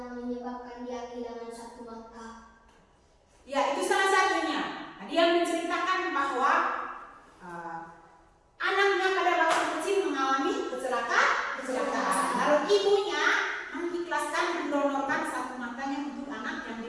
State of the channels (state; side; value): identical; both; correlation 1.00